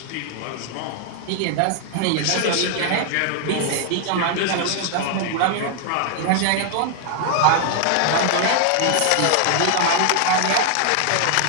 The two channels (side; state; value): both; different; correlation 0.00